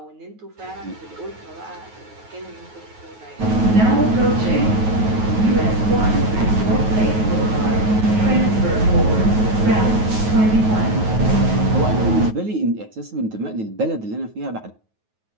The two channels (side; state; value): left; late; 9.3 ms